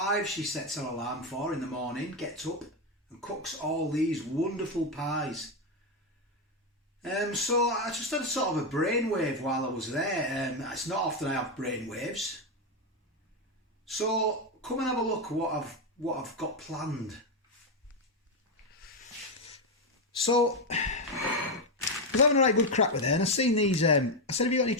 she sets her alarm for in the morning, gets up and cooks all these wonderful pies. So I just had a sort of a brainwave while I was there. It's not often I have brainwaves. So come and have a look at what I've got planned. So I was having a right good crack with her, and I seen these. I said, "Have you got any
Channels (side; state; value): both; normal; correlation 0.07